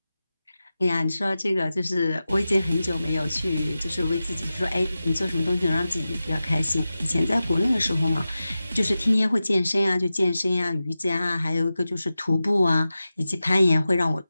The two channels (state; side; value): inverted; both; correlation -0.94